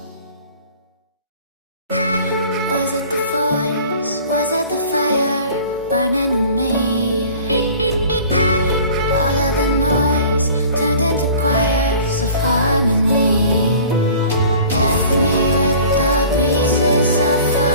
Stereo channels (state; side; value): inverted; both; correlation -0.46